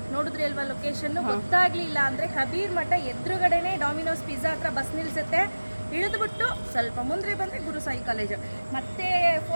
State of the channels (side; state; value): both; inverted; correlation -1.00